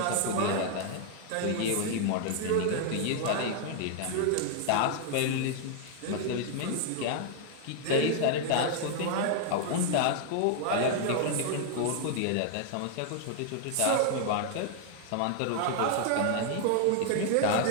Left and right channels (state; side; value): different; both; correlation 0.00